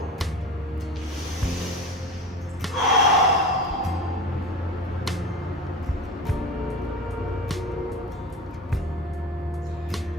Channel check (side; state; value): both; normal; correlation 0.32